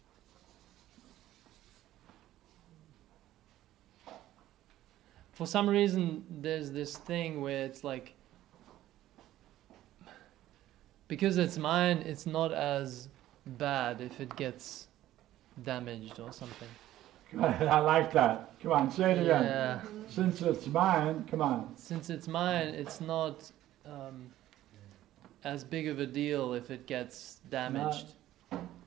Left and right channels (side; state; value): left; quieter; 14.0 dB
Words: For some reason, there's this thing where it's like, because it's mine, it's not as bad if it gets damaged or something. I like that. Come on, say it again. Yeah. Since it's mine, come on. Since it's mine, it's not as big of a deal if it gets damaged.